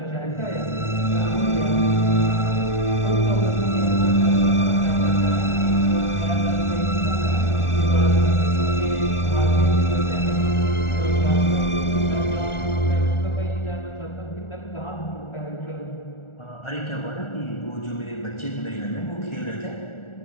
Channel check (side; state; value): right; late; 1.4 ms